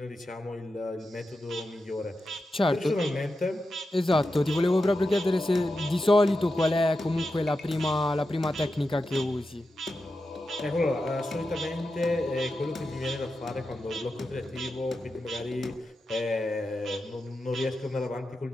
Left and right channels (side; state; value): both; normal; correlation 0.90